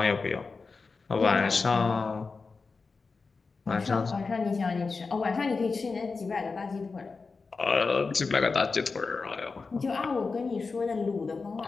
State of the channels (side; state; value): right; quieter; 4.4 dB